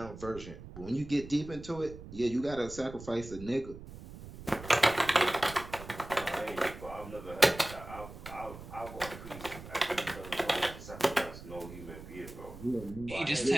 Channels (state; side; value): noise; right; rumble, 14 dB below the sound